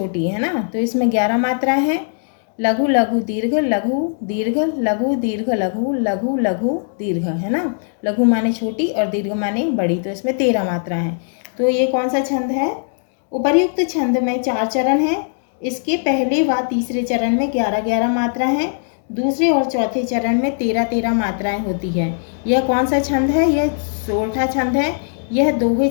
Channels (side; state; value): right; silent; digital silence